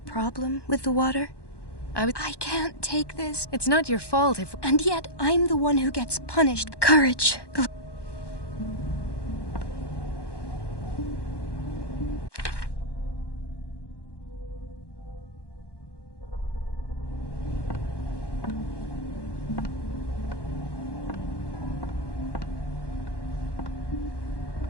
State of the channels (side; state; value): right; late; 1.1 ms